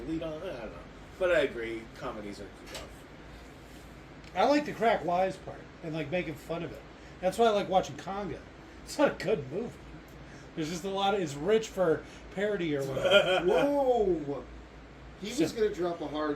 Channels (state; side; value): identical; both; correlation 1.00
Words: lead on. I don't know. But I agree, comedies are rough. I like the crack wise part and like making fun of it. That's why I like watching Congo. It's not a good movie. There's just a lot of, it's rich for parody or whatever. Whoa! He was going to drop a